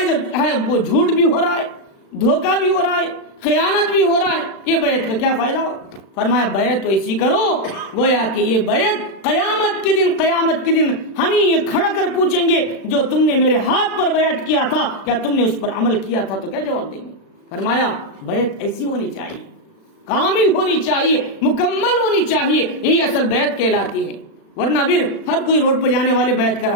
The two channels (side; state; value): right; late; 36 ms